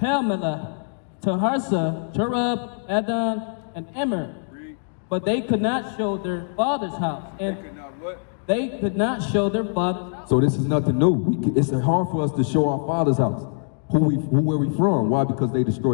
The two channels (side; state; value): right; silent; digital silence